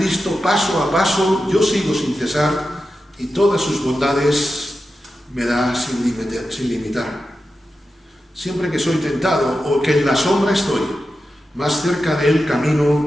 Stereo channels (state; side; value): normal; both; correlation 0.91